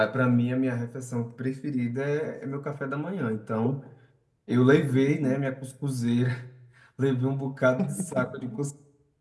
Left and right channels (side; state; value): both; identical; correlation 1.00